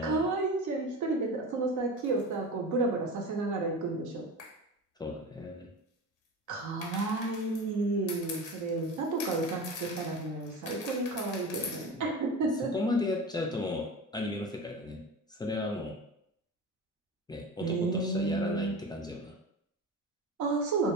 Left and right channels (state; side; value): normal; both; correlation 0.30